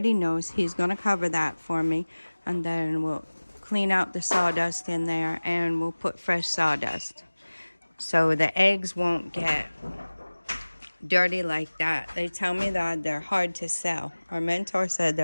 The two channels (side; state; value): both; inverted; correlation -1.00